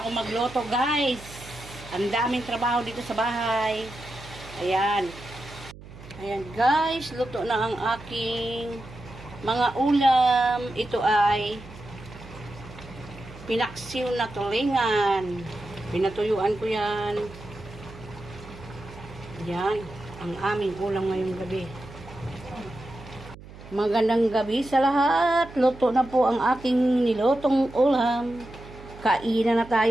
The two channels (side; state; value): right; noise; hum, 17 dB below the sound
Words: ako magluto guys. Ang daming trabaho dito sa bahay. Ayan. Ayan guys, luto na ang aking mga ulam. Ito ay pinaksiw na tulingan. Pinatuyuan ko yan. Yan ang aming ulam ngayong gabi. Magandang gabi sa lahat. Luto na po ang aking nilutong ulam. Kainan na